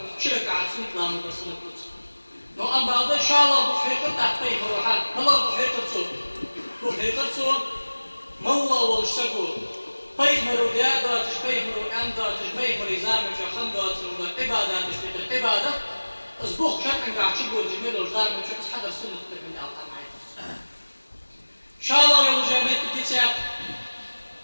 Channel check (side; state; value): both; inverted; correlation -1.00